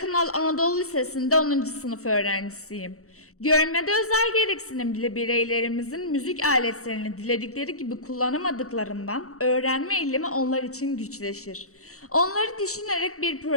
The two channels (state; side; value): late; right; 0.64 ms